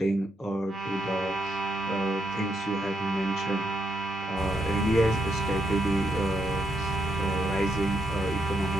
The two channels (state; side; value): normal; both; correlation 0.79